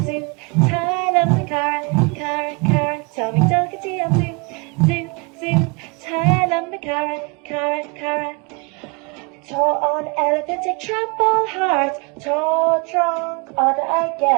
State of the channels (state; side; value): quieter; left; 31.1 dB